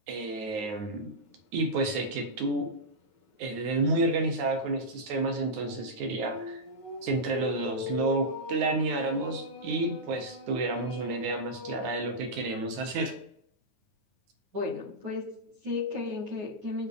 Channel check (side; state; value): left; late; 9.5 ms